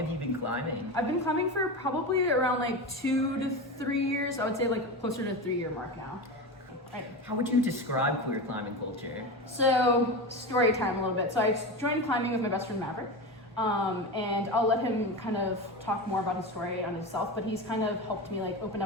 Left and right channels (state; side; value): normal; both; correlation 0.22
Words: you been climbing? I've been climbing for probably around like 2 to 3 years. I would say like closer to the 3-year mark now. Right. How would you describe queer climbing culture? So, story time a little bit. So I joined climbing with my best friend Maverick. And I'll let him kind of talk more about his story on himself, but he's kind of helped me like open